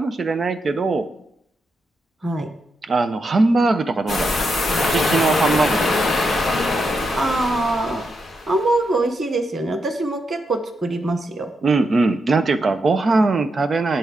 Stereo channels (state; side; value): normal; both; correlation 0.84